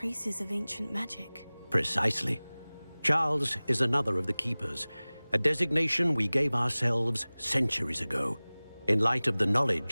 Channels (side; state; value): both; inverted; correlation -0.99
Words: of ancient magic. Precisely. Charles is another of the Keepers, a designation we gave ourselves centuries ago, in light of the